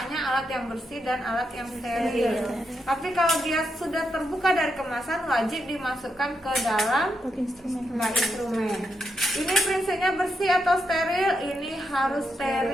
alat yang bersih dan alat yang steril. Tapi kalau dia sudah terbuka dari kemasan, wajib dimasukkan ke dalam bak instrumen. Ini prinsipnya bersih atau steril? Ini harus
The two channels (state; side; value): normal; both; correlation 0.82